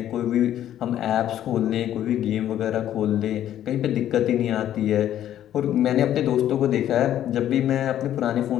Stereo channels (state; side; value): quieter; right; 11.5 dB